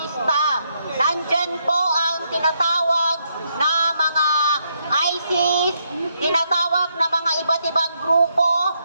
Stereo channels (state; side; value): inverted; both; correlation -0.77